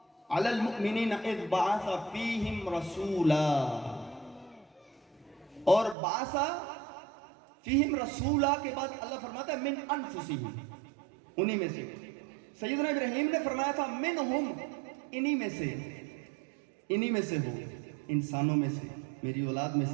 علی المؤمنین اذ بعث فیہم رسولا، اور بعث فیہم رسولا کے بعد اللہ فرماتا ہے من انفسہم، انہی میں سے۔ سیدنا ابراہیم نے فرمایا تھا منہم، انہی میں سے، انہی میں سے ہو، انسانوں میں سے، میری اولاد میں سے،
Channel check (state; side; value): drops out; left; at 6.0 s